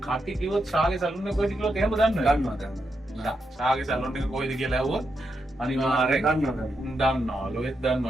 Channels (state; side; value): normal; both; correlation 0.84